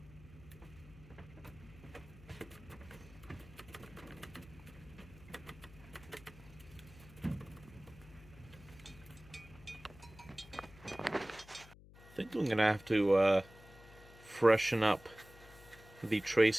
I think I'm gonna have to freshen up the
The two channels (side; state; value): left; noise; hum, 20 dB below the sound